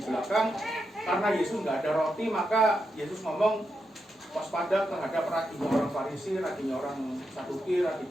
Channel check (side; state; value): both; normal; correlation 0.85